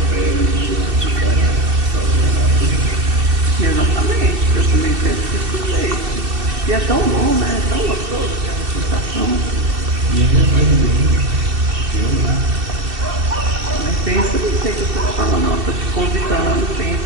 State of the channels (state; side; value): late; left; 2.7 ms